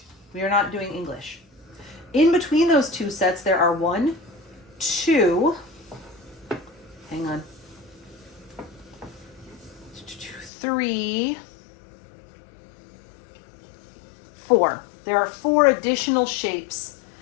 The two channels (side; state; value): right; drops out; at 10.5 s